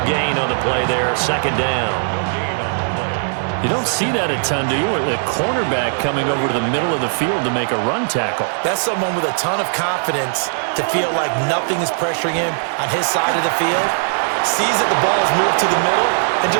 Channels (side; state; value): left; silent; digital silence